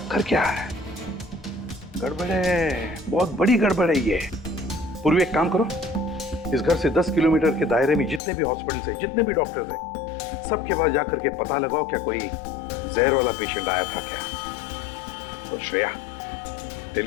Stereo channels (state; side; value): drops out; right; at 8.2 s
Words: क्या है? गड़बड़ है, बहुत बड़ी गड़बड़ है ये। पूर्वी एक काम करो, इस घर से 10 किलोमीटर के दायरे में जितने भी हॉस्पिटल्स हैं, जितने भी डॉक्टर्स हैं, सबके पास जाकर के पता लगाओ क्या कोई जहर वाला पेशेंट आया था क्या। और श्रेया,